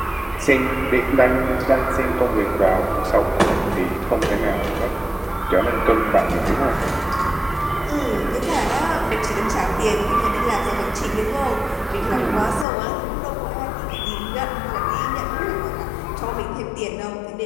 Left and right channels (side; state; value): right; drops out; at 12.7 s